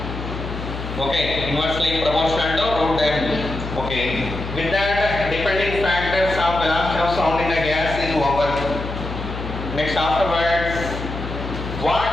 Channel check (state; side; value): noise; left; hum, 7 dB below the sound